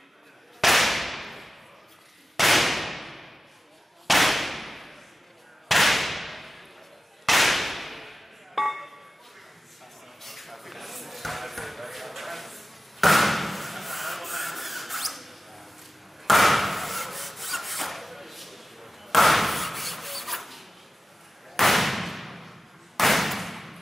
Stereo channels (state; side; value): normal; both; correlation 0.96